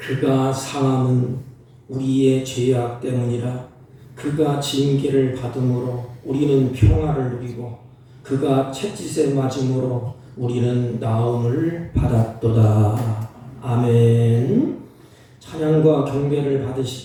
상함은 우리의 죄악 때문이라. 그가 징계를 받음으로 우리는 평화를 누리고 그가 채찍에 맞음으로 우리는 나음을 받았도다. 아멘. 찬양과 경배를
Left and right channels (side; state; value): both; identical; correlation 1.00